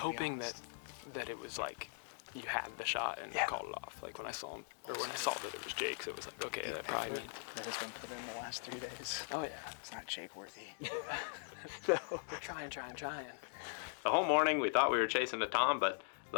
that it was like you had the shot and called it off. Like when I saw him, or when I saw that it was Jake's, it was like, okay, that probably means. That has been put in the last 3 days. Oh yeah. It's not Jake worthy. We're trying. The whole morning we thought we were chasing a tom, but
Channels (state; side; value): silent; right; digital silence